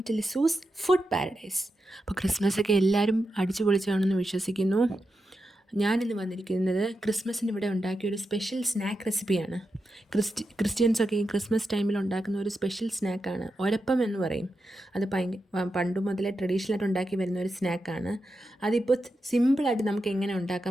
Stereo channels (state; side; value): normal; both; correlation 0.88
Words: to Lizu's food paradise. അപ്പോൾ ക്രിസ്മസൊക്കെ എല്ലാവരും അടിച്ചു പൊളിച്ചാണെന്ന് വിശ്വസിക്കുന്നു. ഞാനിന്ന് വന്നിരിക്കുന്നത് ക്രിസ്മസിന് ഇവിടെ ഉണ്ടാക്കിയ ഒരു സ്പെഷ്യൽ സ്നാക്ക് റെസിപ്പിയാണ്. ക്രിസ്ത്യൻസൊക്കെ ഈ ക്രിസ്മസ് ടൈമിൽ ഉണ്ടാക്കുന്ന ഒരു സ്പെഷ്യൽ സ്നാക്കാണ് ഒരപ്പം എന്ന് പറയും. അത് പണ്ട് മുതലേ ട്രഡീഷണലായിട്ട് ഉണ്ടാക്കി വരുന്ന ഒരു സ്നാക്കാണ്. അതിപ്പോൾ സിമ്പിളായിട്ട് നമുക്ക് എങ്ങനെ